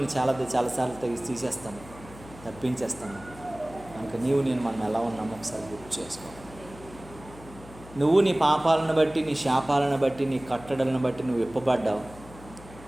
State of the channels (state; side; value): noise; left; hum, 18 dB below the sound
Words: చాలాసార్లు తీసేస్తాము, తప్పించేస్తాము. కనుక నేను మనం ఎలా ఉన్నామో ఒకసారి గుర్తు చేసుకో. నువ్వు నీ పాపాలను బట్టి, నీ శాపాలను బట్టి, నీ కట్టడలను బట్టి నువ్వు విప్పబడ్డావు.